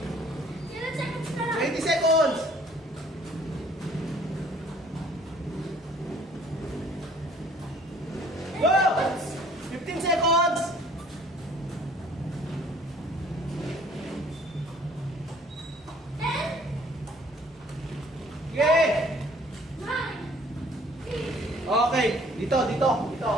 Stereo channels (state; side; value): normal; both; correlation 0.56